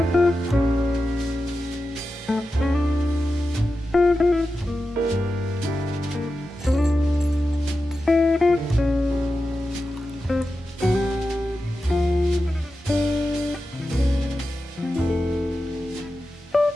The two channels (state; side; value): normal; both; correlation 0.91